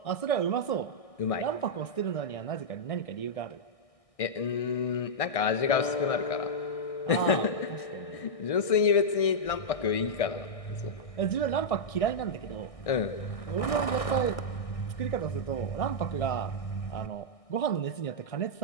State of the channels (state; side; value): late; right; 1.6 ms